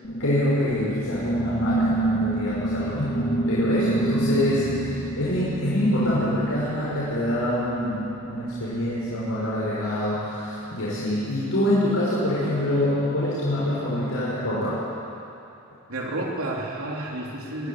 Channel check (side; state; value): both; normal; correlation 0.49